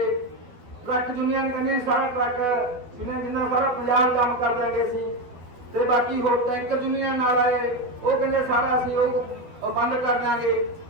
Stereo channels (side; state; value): left; late; 12 ms